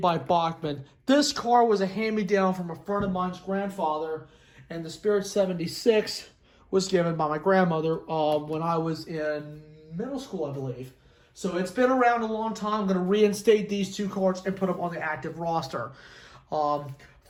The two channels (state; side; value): identical; both; correlation 1.00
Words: by Bachman. This car was a hand-me-down from a friend of mine's grandfather, and the Spirit 76 was given by my grandmother when I was in middle school, I believe. So it's been around a long time. I'm going to reinstate these two cars and put them on the active roster.